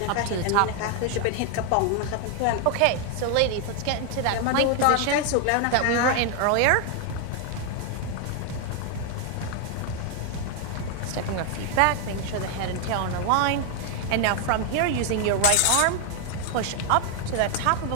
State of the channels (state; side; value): different; both; correlation 0.01